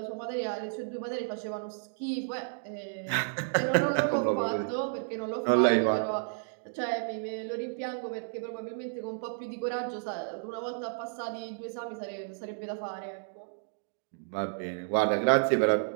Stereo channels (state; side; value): silent; left; digital silence